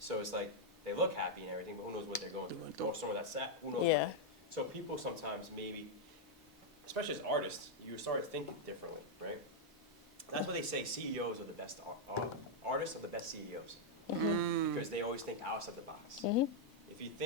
it's like they look happy and everything, but who knows what they're going through? Or someone that's sad, who knows? Yeah. So people sometimes maybe, especially as artists, you start thinking differently, right? That's what they say. CEOs are the best artists are the best CEOs because they always think outside the box. If you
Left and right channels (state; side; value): normal; both; correlation -0.02